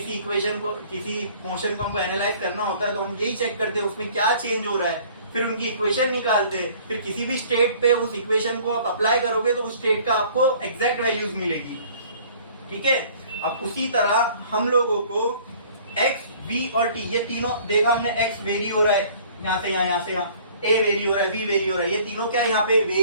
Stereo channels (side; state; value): both; inverted; correlation -0.53